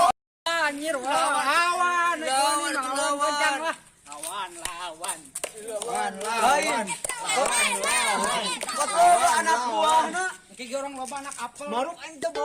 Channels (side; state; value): both; identical; correlation 1.00